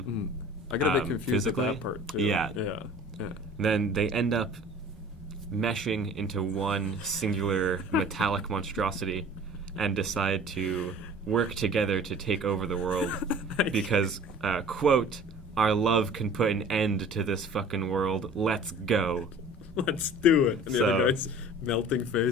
I got a bit confused physically. with that part, too. Yeah. Yeah. Then they end up meshing into one singular metallic monstrosity and decide to work together to take over the world because, quote, our love can put an end to this fucking world. Let's go. Let's do it. And the other guy's melting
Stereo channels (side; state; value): both; normal; correlation 0.46